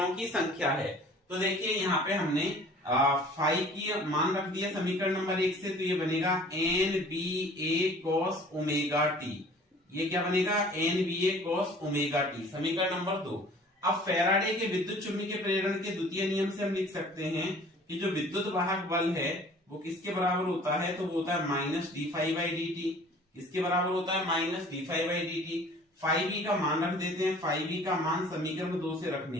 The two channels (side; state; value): both; normal; correlation 0.49